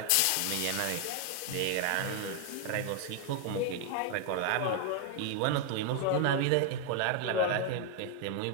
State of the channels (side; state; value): both; different; correlation 0.00